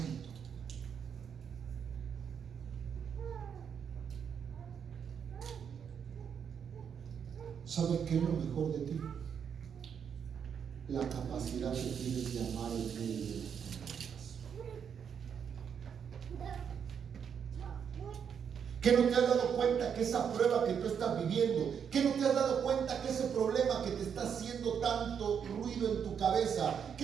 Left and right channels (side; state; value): left; quieter; 7.5 dB